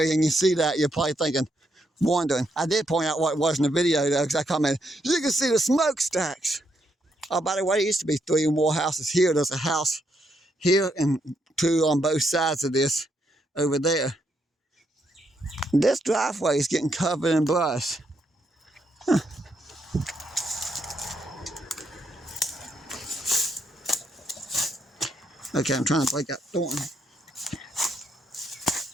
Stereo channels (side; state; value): both; normal; correlation 0.78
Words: and you see that, you're probably wondering. I did point out what it was in the video though, because I commented, you can see the smokestacks. Oh, by the way, there used to be 3 or more houses here. There's a house here and 2 on both sides of this over there. This driveway is getting covered in brush. Huh. Okay, I'm trying to break that thorn.